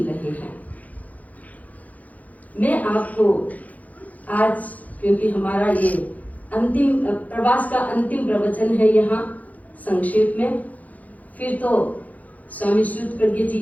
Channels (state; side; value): late; right; 0.076 ms